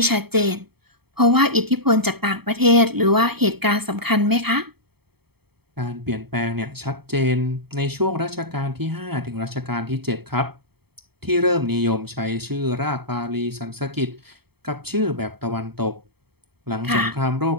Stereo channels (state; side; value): late; left; 0.97 ms